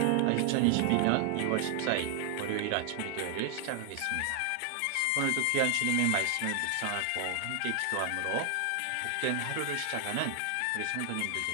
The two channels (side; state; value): both; different; correlation 0.00